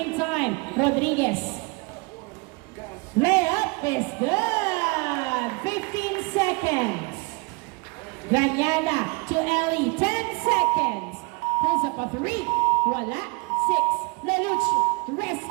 time. Rodriguez. Layup is good. 15 seconds. Ranyada to Ellie. 10 seconds. Pulls up a 3. Wala. 6. Leluch.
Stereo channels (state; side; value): quieter; left; 28.9 dB